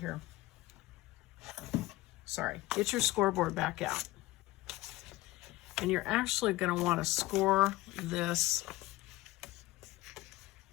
here. Sorry, get your scoreboard back out. And you're actually going to want to score this,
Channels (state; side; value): quieter; right; 18.5 dB